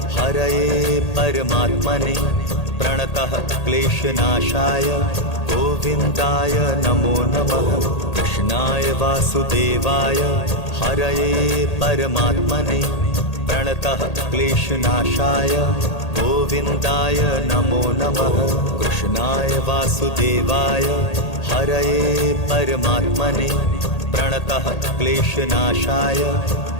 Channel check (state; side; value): late; right; 1.8 ms